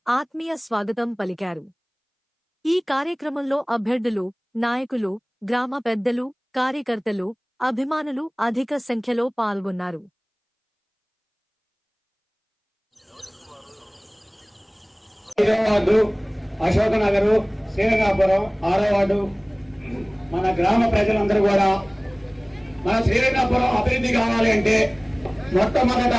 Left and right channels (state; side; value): identical; both; correlation 1.00